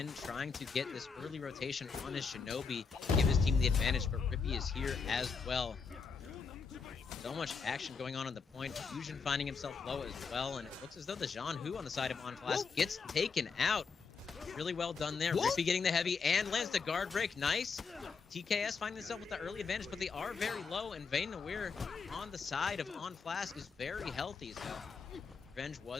trying to get this early rotation on his Shinobi, give his team the advantage, but Rippy is here as well. So much action going on the point. Fusion finding himself low as well, and it looks as though the Jean Hu on the side of Onflask gets taken out. Really well done there. Rippy getting the heavy and lands the guard break. Nice. TKS finding themselves with the early advantage, but they are very low, and Vayne Noir on the side of Onflask is very healthy, so revenge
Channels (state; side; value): quieter; right; 5.3 dB